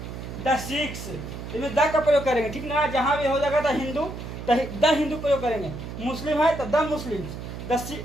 द सिख्स, इसमें द का प्रयोग करेंगे। ठीक ना, जहाँ भी हो जाएगा द हिंदू, द हिंदू प्रयोग करेंगे। मुस्लिम है तो द मुस्लिम्स, द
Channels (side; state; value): right; noise; hum, 9 dB below the sound